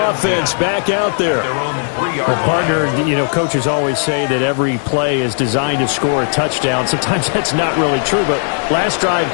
back out there. Well, partner, you know, coaches always say that every play is designed to score a touchdown. Sometimes that's not really true, but last drive,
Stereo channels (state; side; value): silent; right; 58 dB below the other